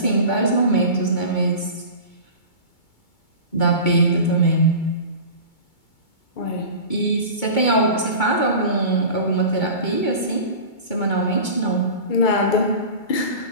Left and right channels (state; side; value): late; right; 2.2 ms